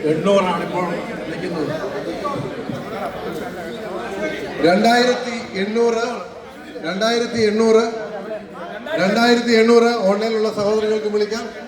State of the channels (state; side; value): identical; both; correlation 1.00